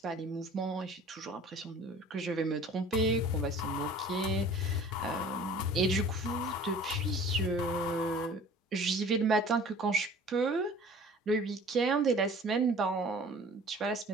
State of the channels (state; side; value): normal; both; correlation 0.47